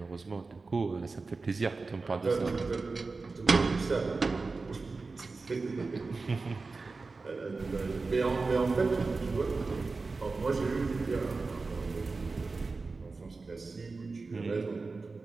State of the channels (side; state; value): left; quieter; 4.0 dB